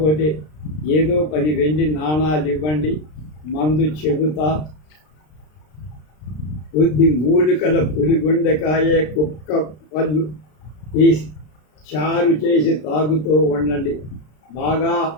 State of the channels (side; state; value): right; late; 33 ms